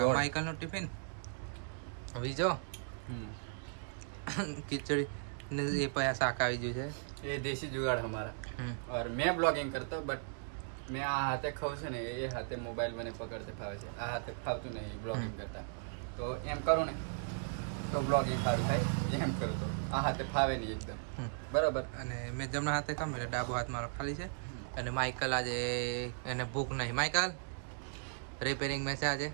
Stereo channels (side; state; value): left; silent; digital silence